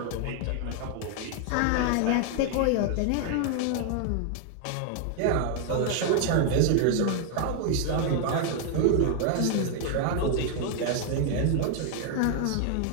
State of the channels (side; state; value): both; different; correlation 0.00